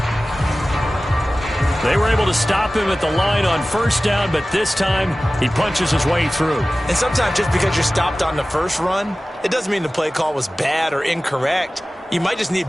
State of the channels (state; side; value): normal; both; correlation 0.97